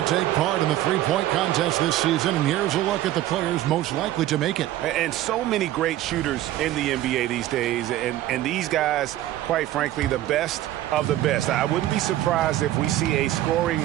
to take part in the three-point contest this season, and here's a look at the players most likely to make it. And so many great shooters in the NBA these days, and these guys, quite frankly, the best of the best. I wouldn't be surprised if we see a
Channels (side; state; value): left; quieter; 14.2 dB